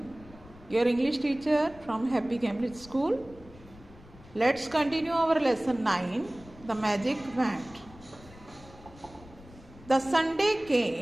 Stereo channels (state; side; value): noise; left; rumble, 21 dB below the sound